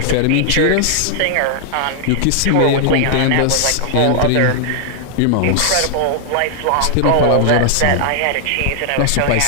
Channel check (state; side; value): different; both; correlation -0.01